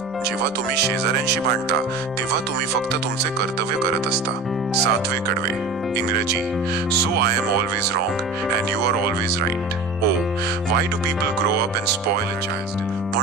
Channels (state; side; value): quieter; left; 3.3 dB